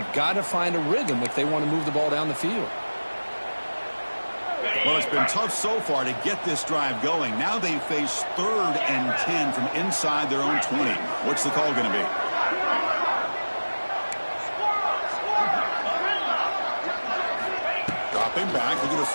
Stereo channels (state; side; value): inverted; both; correlation -1.00